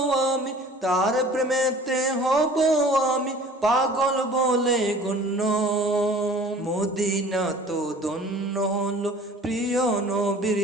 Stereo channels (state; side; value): normal; both; correlation 0.47